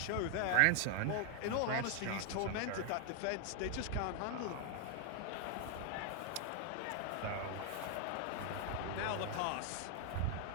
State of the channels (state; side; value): different; both; correlation 0.00